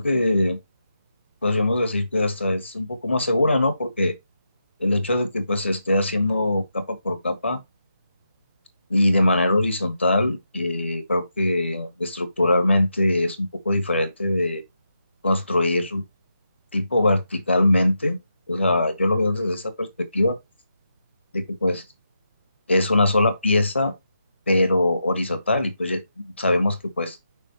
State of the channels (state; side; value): inverted; both; correlation -0.85